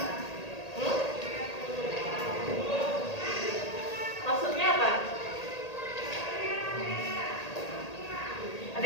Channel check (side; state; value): right; late; 1.8 ms